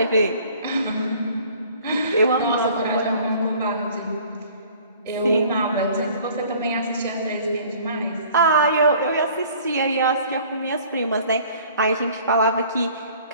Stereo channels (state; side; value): inverted; both; correlation -0.52